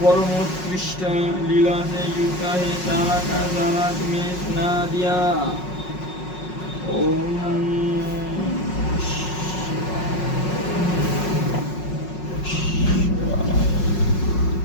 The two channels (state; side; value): late; right; 5.5 ms